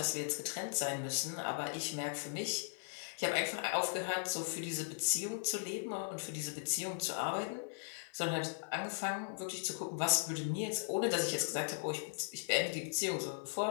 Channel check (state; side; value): silent; right; 52 dB below the other